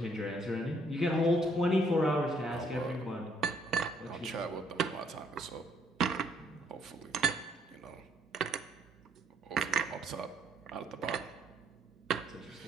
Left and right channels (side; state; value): both; normal; correlation 0.68